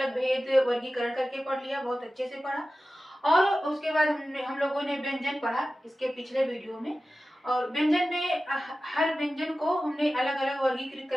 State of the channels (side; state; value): both; normal; correlation 0.95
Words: भेद वर्गीकरण करके पढ़ लिया, बहुत अच्छे से पढ़ा। और उसके बाद हम लोगों ने व्यंजन पढ़ा इसके पिछले वीडियो में, और व्यंजन में हर व्यंजन को हमने अलग अलग वर्गीकृत